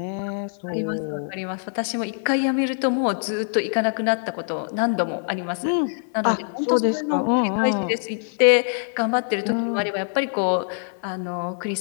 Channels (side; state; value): right; silent; 63 dB below the other